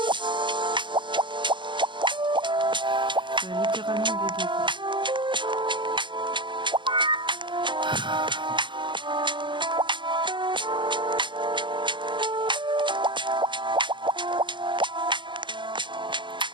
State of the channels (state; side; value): late; left; 0.23 ms